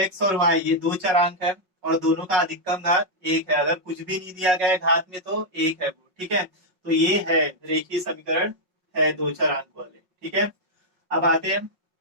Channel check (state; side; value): late; left; 5.4 ms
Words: और y ये दो चरांक है और दोनों का अधिकतम घात एक है। अगर कुछ भी नहीं दिया गया है घात में तो एक है वो। ठीक है, तो ये है रेखीय समीकरण, है दो चरांक वाले। ठीक है, अब आते हैं